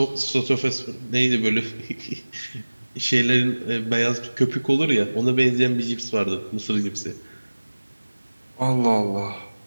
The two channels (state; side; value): inverted; both; correlation -1.00